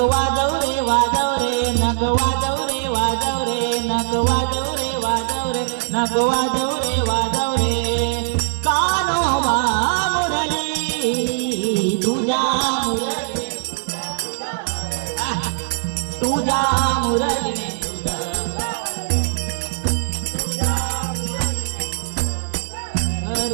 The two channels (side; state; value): left; silent; digital silence